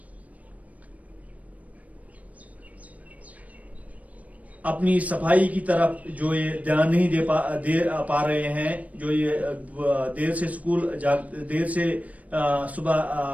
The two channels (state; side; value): late; left; 0.069 ms